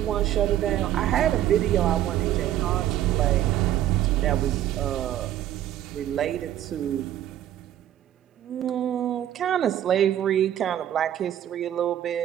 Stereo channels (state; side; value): quieter; left; 11.9 dB